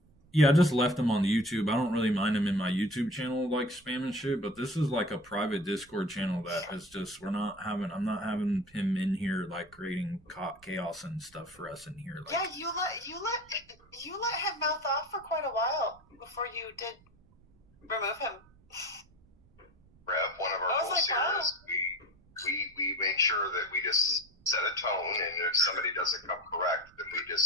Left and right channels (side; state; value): right; noise; rumble, 29 dB below the sound